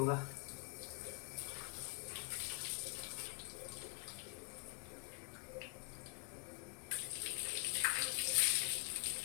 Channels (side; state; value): right; quieter; 34.8 dB